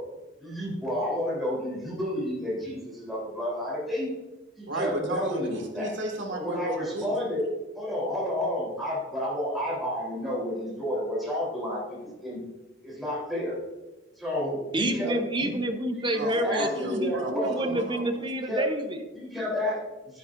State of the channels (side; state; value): both; normal; correlation 0.38